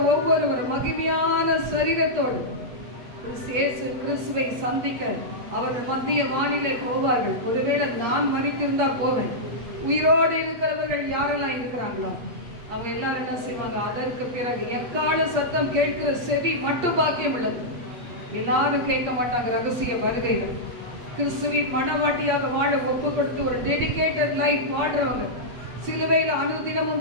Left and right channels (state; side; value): late; left; 8.3 ms